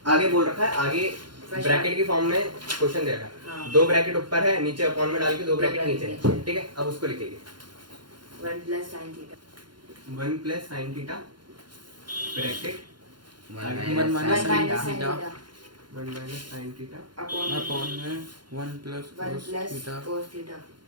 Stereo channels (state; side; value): late; left; 0.71 ms